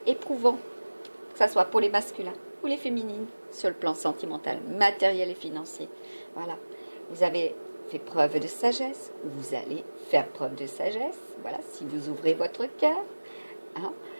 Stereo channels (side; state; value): both; inverted; correlation -1.00